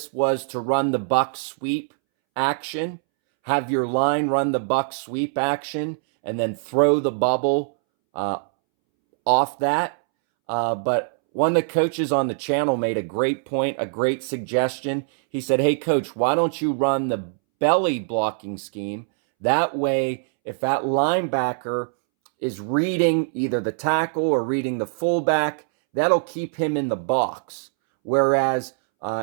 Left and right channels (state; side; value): silent; left; 63 dB below the other